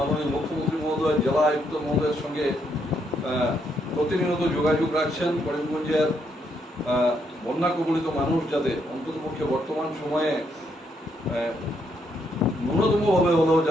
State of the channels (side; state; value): both; normal; correlation 0.75